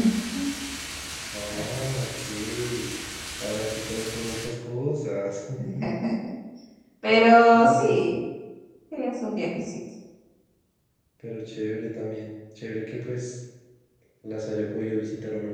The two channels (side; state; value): both; identical; correlation 1.00